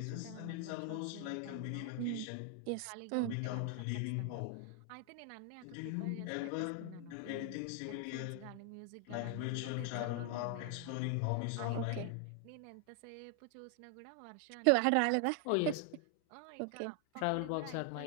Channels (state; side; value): different; both; correlation 0.00